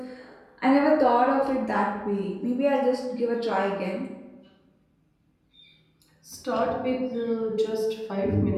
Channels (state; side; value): identical; both; correlation 1.00